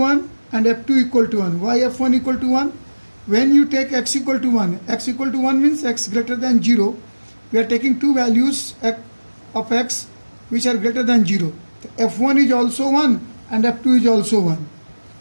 and f2 equal to 1. Why f1 equal to 1? When you take x equal to 1, x equal to 1 means x greater than 0. We are taking two values of x which are greater than 0. f1 is also 1 and f2 is also 1.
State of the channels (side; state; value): both; inverted; correlation -1.00